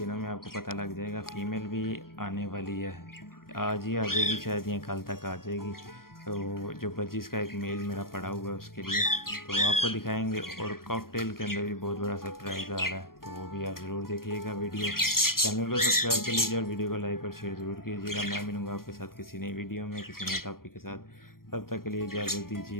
में आपको पता लग जाएगा। फीमेल भी आने वाली है, आज ही आ जाएगी शायद या कल तक आ जाएगी। तो जो बजीज का एक मेल मेरा पड़ा हुआ है उसके लिए तो आपको दिखाएंगे। और कॉकटेल के अंदर भी बहुत बड़ा सरप्राइज़ आ रहा है, तो वो भी आप ज़रूर देखिएगा वीडियो। चैनल को सब्सक्राइब कर लीजिए और वीडियो को लाइक और शेयर ज़रूर कीजिएगा। मैं मिलूँगा आपके साथ किसी नई वीडियो में किसी नए टॉपिक के साथ। तब तक के लिए इजाज़त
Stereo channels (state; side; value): late; right; 0.92 ms